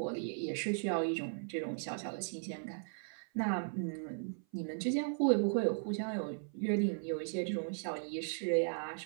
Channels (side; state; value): left; silent; 53 dB below the other